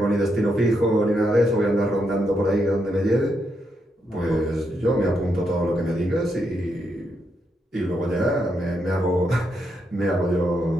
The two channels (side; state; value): both; normal; correlation 0.80